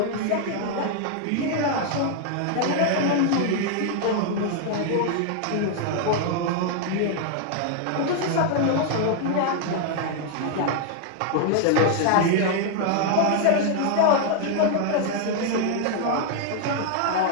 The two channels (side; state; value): both; different; correlation 0.00